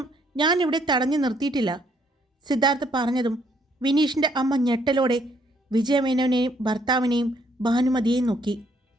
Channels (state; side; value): normal; both; correlation 0.68